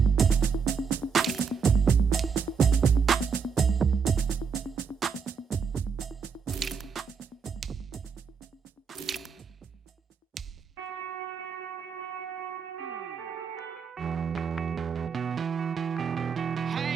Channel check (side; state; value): left; quieter; 6.0 dB